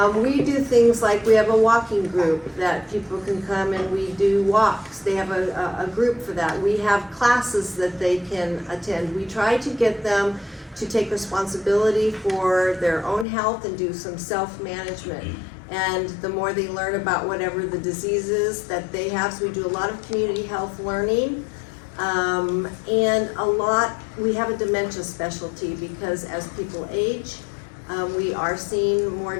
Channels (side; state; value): right; drops out; at 13.2 s